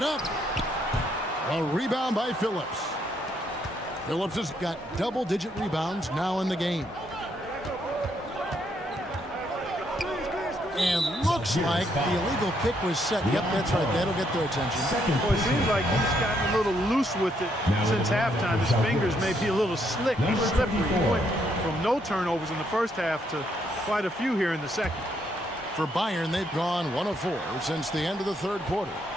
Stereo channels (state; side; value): normal; both; correlation 0.73